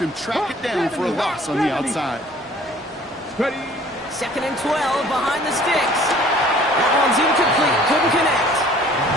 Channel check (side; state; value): both; normal; correlation 0.53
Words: him track it down for a loss on the outside. Second and 12 behind the sticks. That one's incomplete. Couldn't connect.